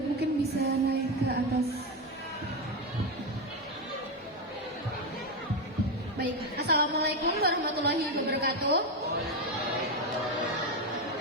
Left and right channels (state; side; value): normal; both; correlation 0.10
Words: mungkin bisa naik ke atas. Baik, Assalamualaikum warahmatullahi wabarakatuh.